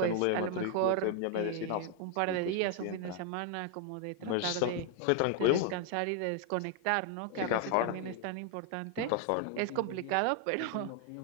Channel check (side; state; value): both; different; correlation 0.00